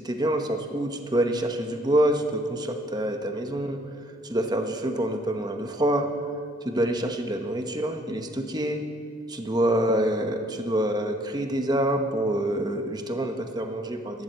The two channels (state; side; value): normal; both; correlation 0.63